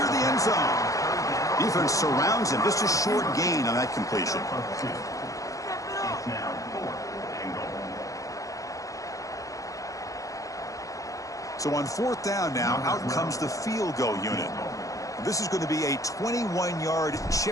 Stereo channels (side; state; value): right; late; 0.16 ms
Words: the end zone. Defense surrounds him. Just a short gain on that completion. So on 4th down now, out comes the field goal unit. This is going to be a 21-yard